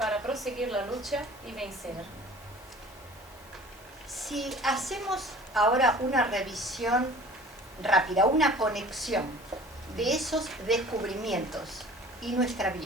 proseguir la lucha y vencer. Si hacemos ahora una revisión rápida, una conexión de esos descubrimientos y nuestra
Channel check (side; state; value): both; normal; correlation 0.46